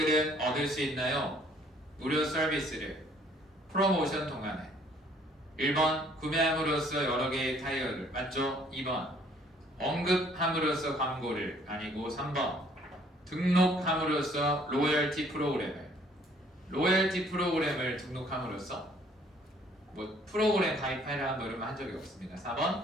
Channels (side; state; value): both; normal; correlation 0.60